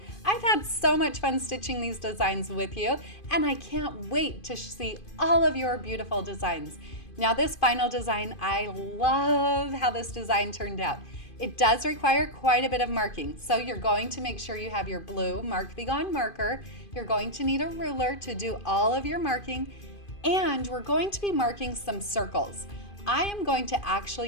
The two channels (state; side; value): late; right; 2.5 ms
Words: I've had so much fun stitching these designs with you, and I can't wait to see all of your beautiful designs. Now this final design, I love how this design turned out. It does require quite a bit of marking, so you're going to make sure you have your blue Mark Be Gone marker. You're going to need a ruler to do all of your marking, and we're going to be marking some circles. I am going to